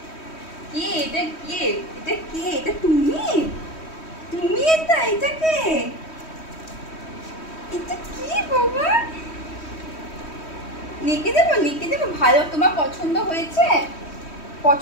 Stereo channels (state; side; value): late; right; 3.1 ms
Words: কে এটা, কে এটা, কে এটা, তুমি তুমি এটা, এটা কে, এটা কি বাবা, লিখে দেবো লিখে দেবো। ভালো, তোমার পছন্দ হয়েছে,